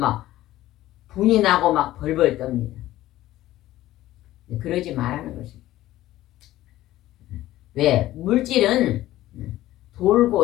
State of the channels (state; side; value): quieter; right; 15.1 dB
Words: 분이 나고 막 벌벌 떱니다. 그러지 말라는 것입니다. 왜? 물질은